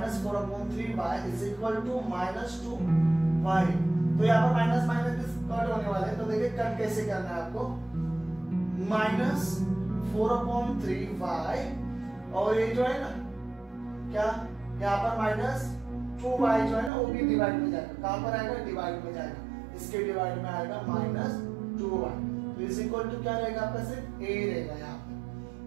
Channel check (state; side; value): drops out; left; at 16.9 s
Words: 4/3y is equal to minus 2y। तो यहाँ पर माइनस माइनस कट होने वाले हैं, तो देखिए कट कैसे करना है आपको? माइनस 4/3y और ये जो है ना क्या यहाँ पर माइनस 2y जो है ना वो भी डिवाइड में जाएगा। कहां पर आएगा? डिवाइड में जाएगा। इसके डिवाइड में आएगा माइनस 2y। तो इज इक्वल टू क्या रहेगा आपका? सिर्फ a रहेगा यहाँ पे।